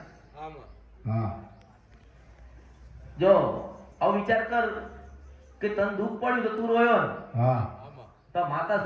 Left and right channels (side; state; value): both; identical; correlation 1.00